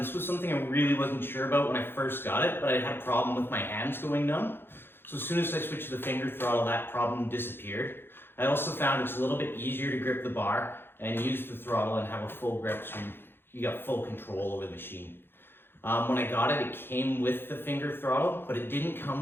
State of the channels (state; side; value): late; right; 0.10 ms